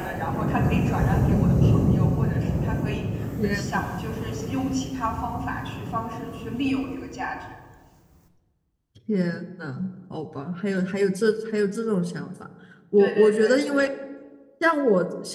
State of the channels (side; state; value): both; identical; correlation 1.00